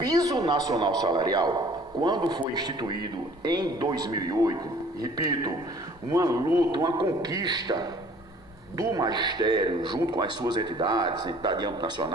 nacional salarial, quando foi instituído em 2008, repito, uma luta, uma conquista do magistério, junto com as suas entidades, entidade de âmbito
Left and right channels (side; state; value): both; normal; correlation 0.53